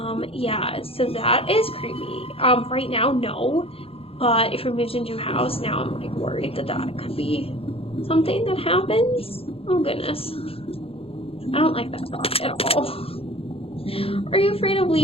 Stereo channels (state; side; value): late; right; 0.27 ms